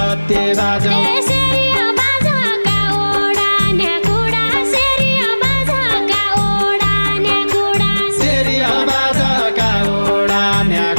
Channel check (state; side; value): inverted; both; correlation -1.00